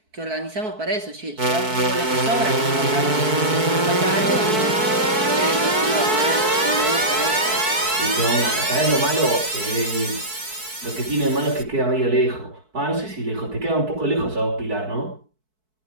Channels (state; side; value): late; left; 4.6 ms